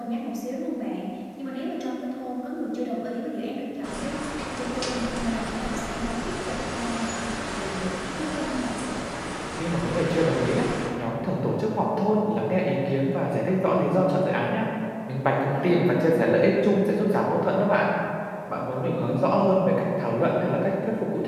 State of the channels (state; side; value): identical; both; correlation 1.00